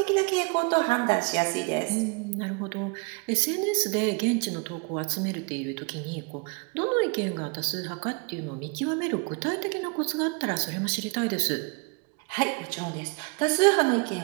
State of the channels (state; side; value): quieter; left; 31.8 dB